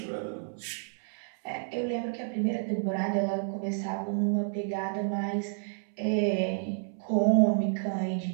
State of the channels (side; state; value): left; silent; 58 dB below the other